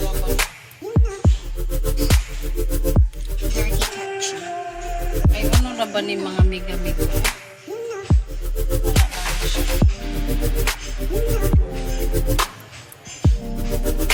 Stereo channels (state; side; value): identical; both; correlation 1.00